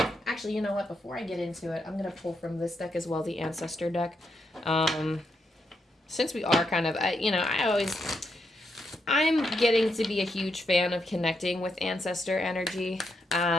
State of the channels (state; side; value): normal; both; correlation 0.81